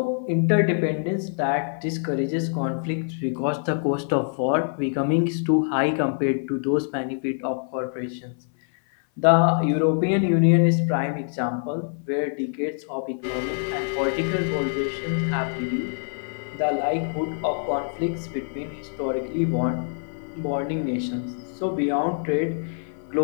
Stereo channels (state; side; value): silent; right; 58 dB below the other